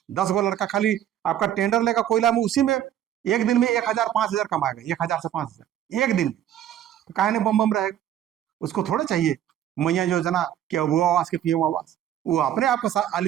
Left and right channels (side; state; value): left; quieter; 11.1 dB